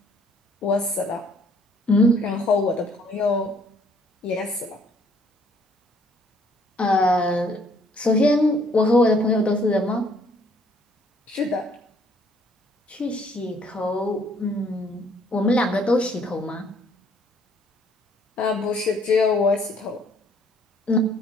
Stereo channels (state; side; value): normal; both; correlation 0.63